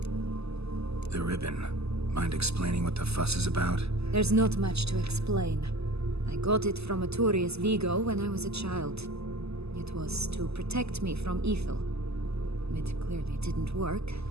The ribbon. Mind explaining what the fuss is about? There's not much to explain. I got it from Arturius Vigo when I was a child. It was to protect me from evil. It clearly didn't work,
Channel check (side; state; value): left; late; 0.79 ms